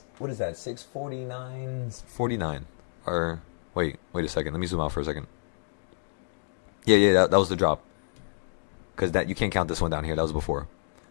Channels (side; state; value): right; silent; digital silence